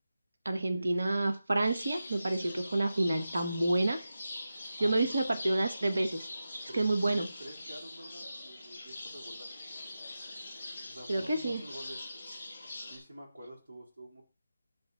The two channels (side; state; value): both; inverted; correlation -0.92